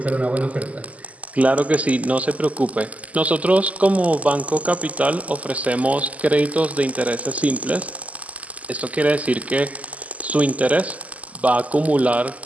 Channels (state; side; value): late; left; 0.072 ms